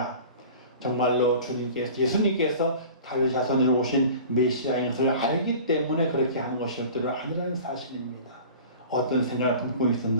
정말로 예수님께서 다윗 자손으로 오신 메시아인 것을 알기 때문에 그렇게 하는 것이었던 아니라는 사실입니다. 어떤 생각을 품고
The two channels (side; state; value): both; inverted; correlation -0.41